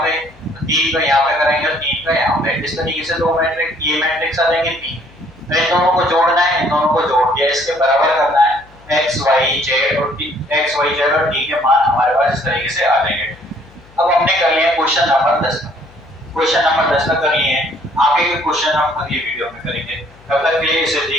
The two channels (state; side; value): noise; left; hum, 26 dB below the sound